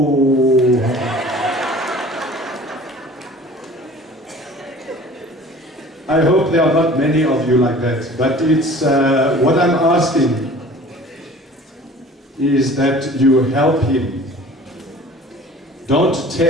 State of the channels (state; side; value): normal; both; correlation 0.46